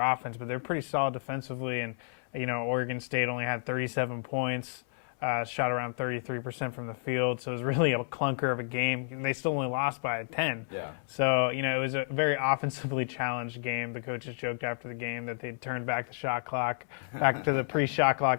but they're pretty solid defensively. And, Oregon State only had 37 points, shot around 33% from the field. So it was really a clunker of a game. They still only lost by 10. Yeah. So, it was a very offensively challenged game. The coaches joked after the game that they turned back the shot clock, back to the pre-shot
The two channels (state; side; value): silent; right; 57 dB below the other